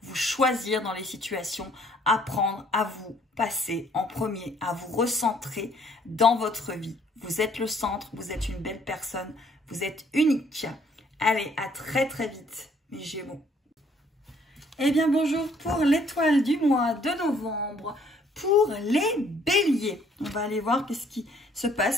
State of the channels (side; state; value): both; normal; correlation 0.63